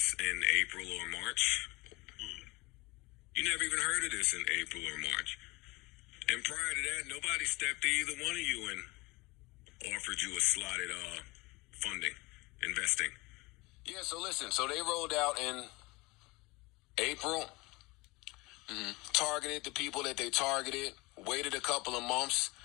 in April or March. You never even heard of this in April or March. And prior to that, nobody stepped to either one of you and offered you a slotted funding, investing. Yeah, so listen. So they rolled out in April, targeted the people that they targeted, waited a couple of months,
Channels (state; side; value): quieter; right; 23.8 dB